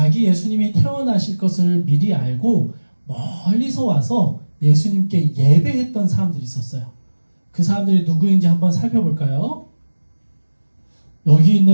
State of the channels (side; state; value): both; inverted; correlation -1.00